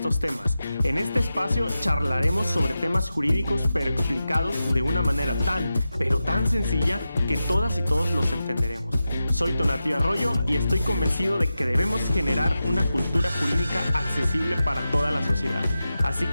temas. En este espacio charlaremos sobre temas jurídicos pero explicados de una manera tan sencilla que todas y todos los entenderemos. Soy Tonatiuh Arroyo y estoy convencido de que debemos generar una cultura jurídica accesible para toda la sociedad. Así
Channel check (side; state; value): both; inverted; correlation -0.92